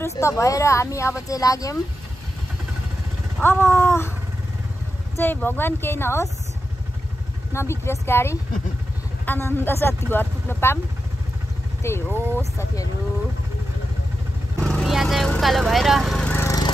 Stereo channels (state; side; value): normal; both; correlation 0.89